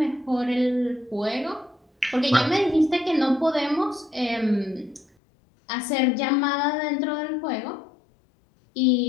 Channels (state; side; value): drops out; right; at 5.1 s